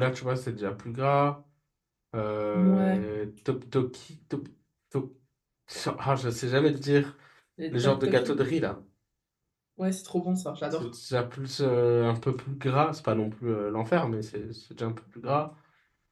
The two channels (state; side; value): identical; both; correlation 1.00